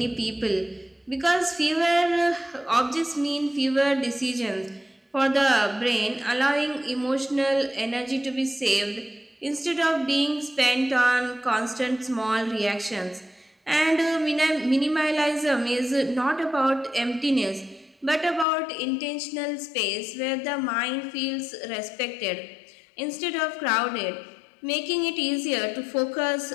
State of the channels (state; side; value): drops out; right; at 18.4 s